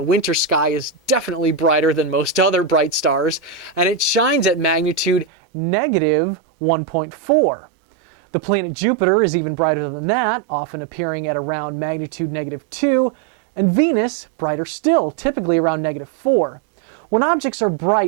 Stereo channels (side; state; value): left; drops out; at 5.2 s